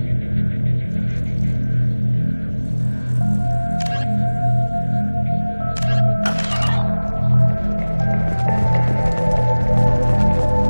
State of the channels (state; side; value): inverted; both; correlation -1.00